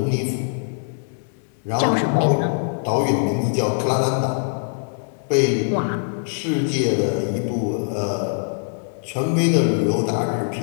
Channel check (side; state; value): right; silent; digital silence